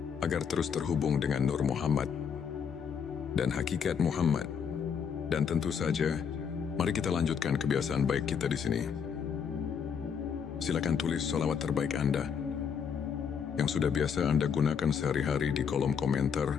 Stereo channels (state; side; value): quieter; right; 7.0 dB